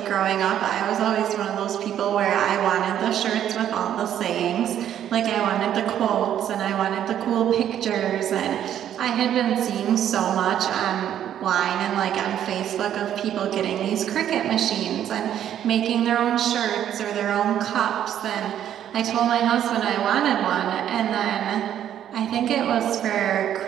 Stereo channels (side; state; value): left; quieter; 10.4 dB